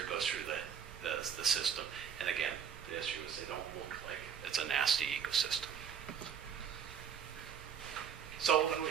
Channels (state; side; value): quieter; left; 7.9 dB